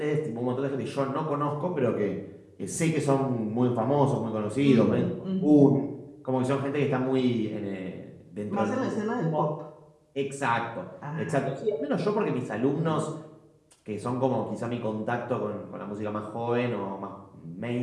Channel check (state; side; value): identical; both; correlation 1.00